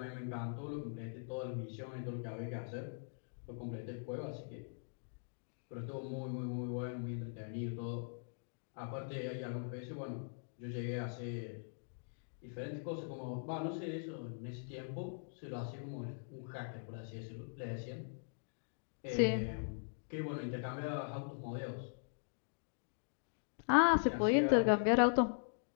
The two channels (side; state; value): right; silent; digital silence